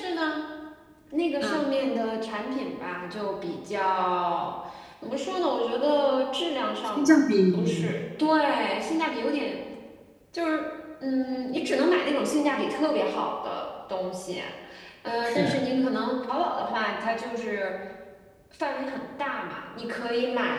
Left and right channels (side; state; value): both; identical; correlation 1.00